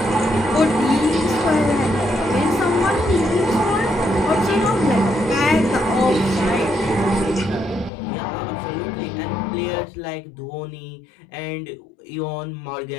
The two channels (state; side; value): drops out; right; at 7.9 s